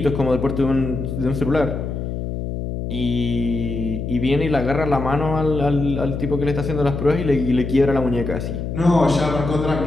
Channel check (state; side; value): noise; left; hum, 4 dB below the sound